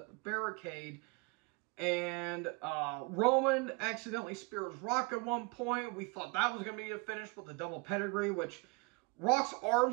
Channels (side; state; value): left; quieter; 28.5 dB